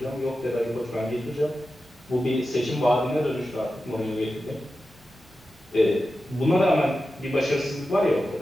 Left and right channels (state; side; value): normal; both; correlation 0.92